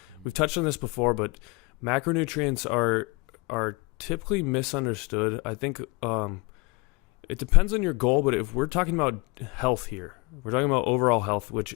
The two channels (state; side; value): quieter; right; 27.5 dB